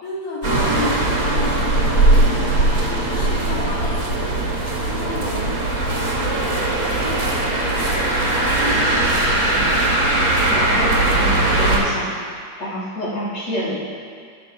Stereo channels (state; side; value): late; right; 8.5 ms